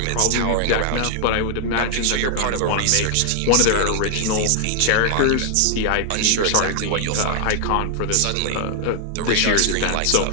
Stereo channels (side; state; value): both; different; correlation 0.00